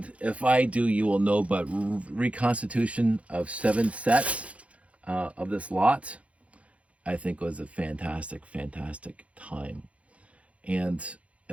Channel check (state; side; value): late; left; 0.064 ms